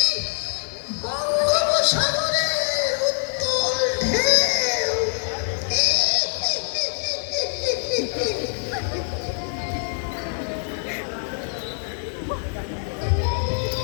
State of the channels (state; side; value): silent; right; 63 dB below the other